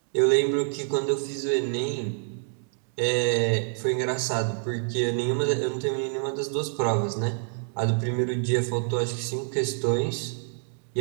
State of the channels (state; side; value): silent; left; digital silence